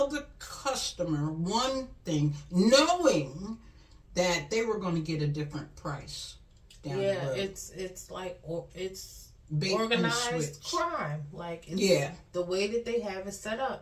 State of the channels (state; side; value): identical; both; correlation 1.00